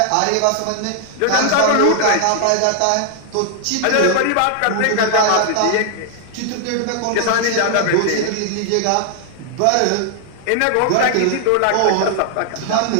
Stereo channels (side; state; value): both; different; correlation 0.00